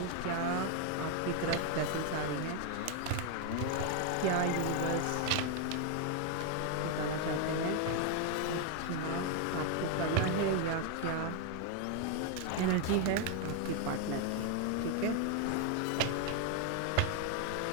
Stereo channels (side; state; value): both; different; correlation 0.00